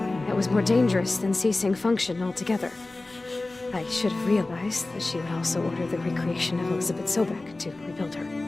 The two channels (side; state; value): right; quieter; 3.1 dB